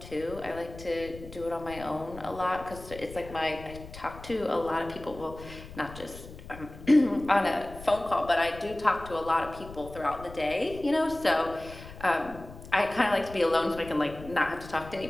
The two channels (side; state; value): left; noise; rumble, 15 dB below the sound